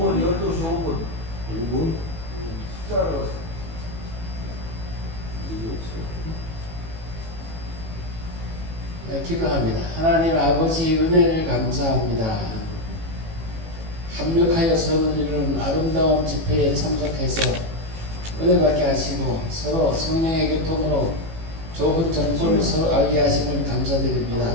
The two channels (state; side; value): late; left; 18 ms